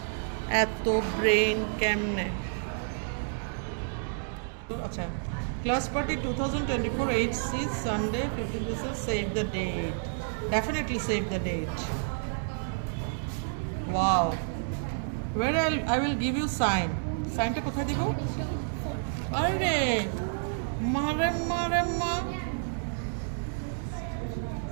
এত brain কেমনে। আচ্ছা, class party 2024 HC Sunday 15th December. Save the date. Definitely save the date. Wow. Where I will give you sign. Signটা কোথায় দিব? আরে মারে মারে মা,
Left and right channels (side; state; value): left; silent; digital silence